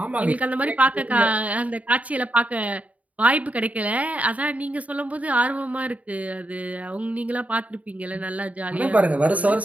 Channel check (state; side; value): late; left; 0.069 ms